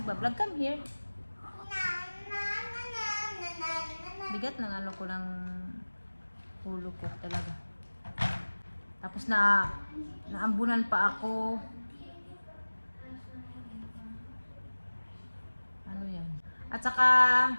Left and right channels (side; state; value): both; inverted; correlation -1.00